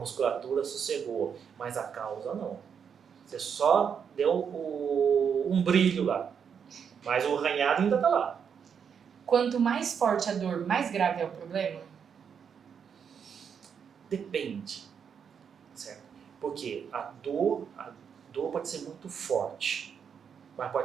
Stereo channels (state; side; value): quieter; left; 7.2 dB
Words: sossegou, mas a causa não. Você só deu um brilho lá, mas o arranhado ainda está lá. Quanto mais forte a dor, mais grave é o problema? Depende, certo? Porque a dor pode ser muito forte, mas